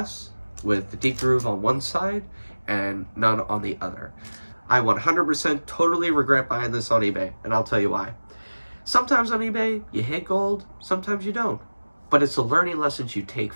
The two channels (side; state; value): both; inverted; correlation -1.00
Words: with the deep groove on one side and none on the other. I 100% totally regret buying this on eBay, and I'll tell you why. Sometimes on eBay, you hit gold, sometimes you don't. But it's the learning lessons you take